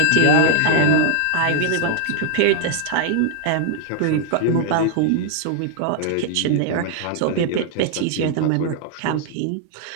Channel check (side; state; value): both; different; correlation -0.01